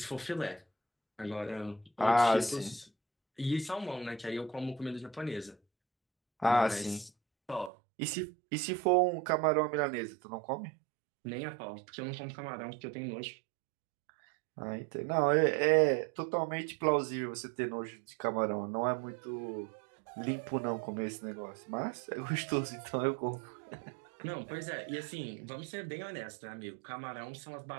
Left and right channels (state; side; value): drops out; left; at 7.7 s